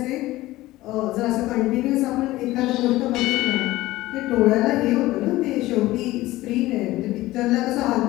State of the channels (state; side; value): quieter; right; 17.5 dB